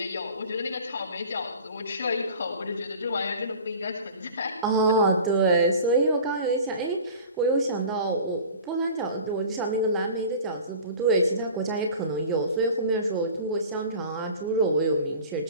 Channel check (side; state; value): both; inverted; correlation -0.40